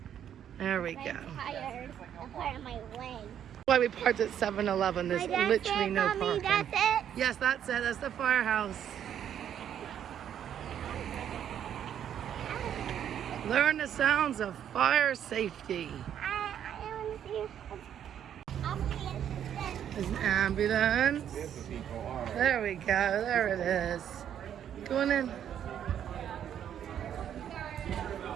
There we go. I'm tired. I'm part of my leg. Why we parked at 7-Eleven. There's literally no parking. That's it. Yes, that's it. That's the firehouse. Learn the sounds of fire safety. I want to see. There's an ambulance. There we go. There it is. Going in.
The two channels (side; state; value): left; quieter; 9.6 dB